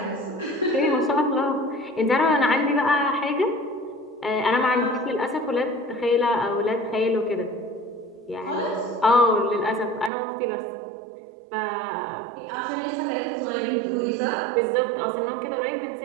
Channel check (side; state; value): left; drops out; at 10.1 s